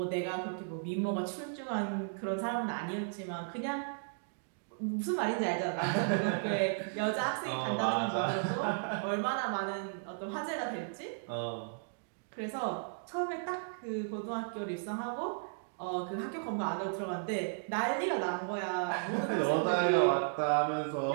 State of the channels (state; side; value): silent; left; digital silence